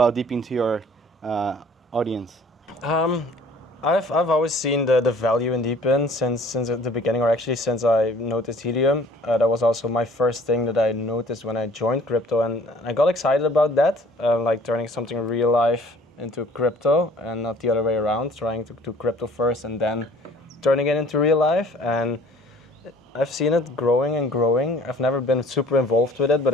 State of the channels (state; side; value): normal; both; correlation 0.53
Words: DePIN to your audience? I've always seen the value in DePIN since the beginning, or actually since I noticed Helium. That was also my first thing that I noticed when I joined crypto, and I got excited about that, like turning something real life into crypto and not the other way around, trying to do crypto first and then turning it into real life. And I've seen it growing and growing. I've never been super involved with it, but